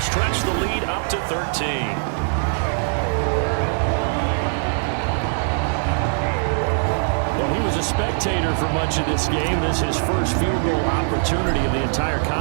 stretch the lead up to 13. Well, he was a spectator for much of this game. This is his first field goal opportunity of the entire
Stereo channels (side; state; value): left; silent; digital silence